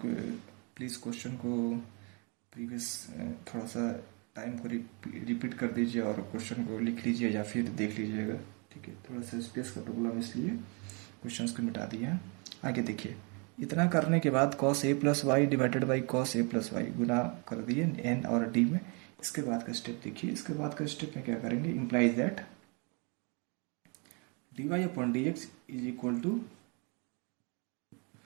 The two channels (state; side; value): quieter; left; 33.6 dB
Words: प्लीज़ क्वेश्चन को प्रीवियस थोड़ा सा टाइम को रिपीट कर दीजिए और क्वेश्चन को लिख लीजिए या फिर देख लीजिएगा। ठीक है, थोड़ा सा स्पेस का प्रॉब्लम, इसलिए क्वेश्चंस को मिटा दिए हैं। आगे देखिए, इतना करने के बाद cos a plus Y divided by cos a plus y गुना कर दिए n और d में। इसके बाद का स्टेप देखिए, इसके बाद का स्टेप में क्या करेंगे, implies that dy upon D x is equal to,